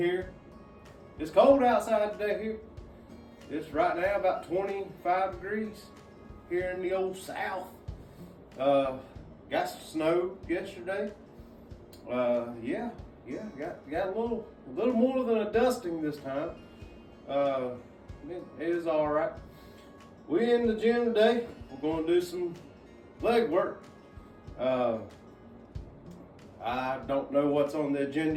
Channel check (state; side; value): identical; both; correlation 1.00